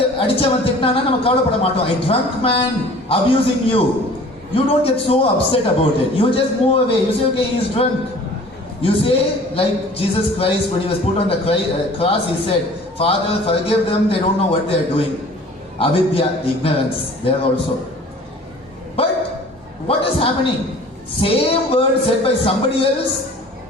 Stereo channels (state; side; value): normal; both; correlation 0.47